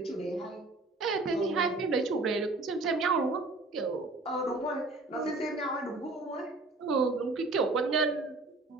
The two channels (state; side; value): quieter; left; 3.1 dB